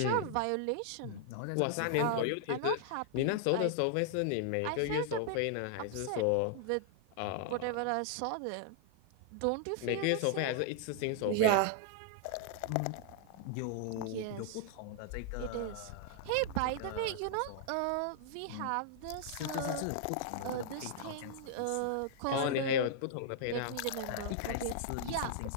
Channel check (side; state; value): both; different; correlation -0.01